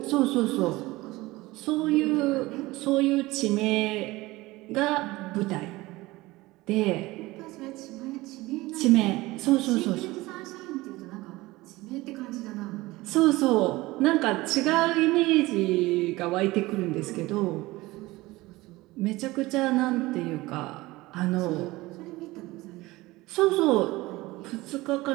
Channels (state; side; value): quieter; left; 19.9 dB